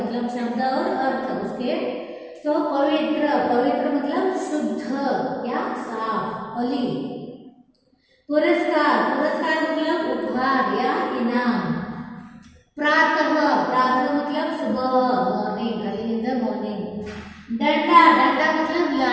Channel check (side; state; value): both; identical; correlation 1.00